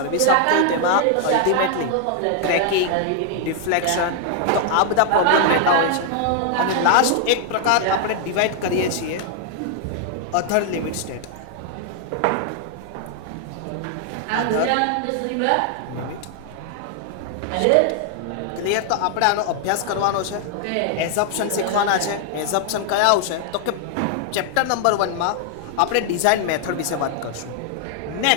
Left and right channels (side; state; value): both; different; correlation 0.00